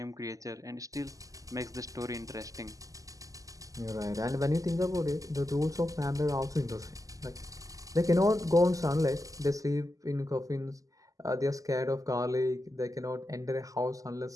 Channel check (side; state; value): left; late; 0.17 ms